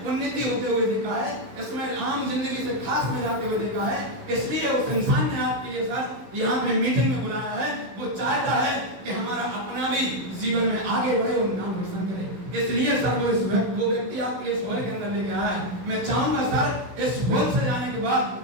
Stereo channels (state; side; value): late; left; 16 ms